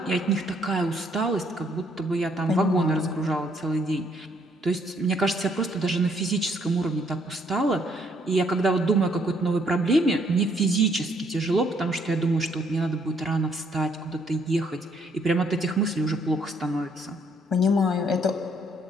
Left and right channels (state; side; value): normal; both; correlation 0.68